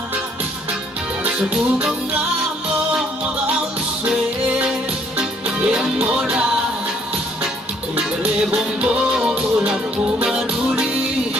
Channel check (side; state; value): both; normal; correlation 0.64